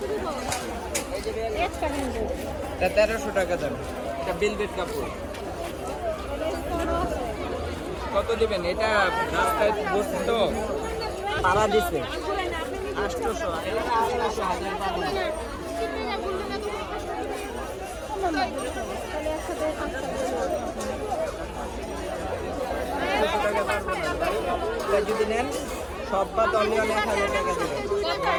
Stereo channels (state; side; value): identical; both; correlation 1.00